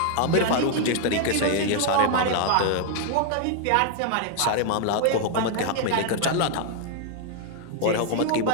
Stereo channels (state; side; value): different; both; correlation 0.00